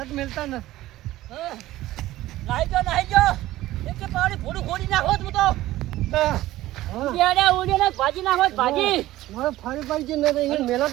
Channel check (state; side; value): quieter; left; 15.8 dB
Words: તો મેલતા ન. નાહી જો એક કે પાણી ફોડું ખોડી નાખો તું તો હા. ઉડિયાને ભાજી નાખો ભાજી મારે ફાડી પાડી છે ને તો એને મેલો જ